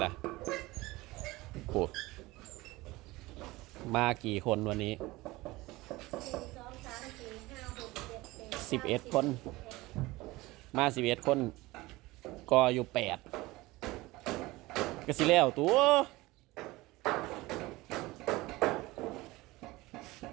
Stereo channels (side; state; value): left; quieter; 20.3 dB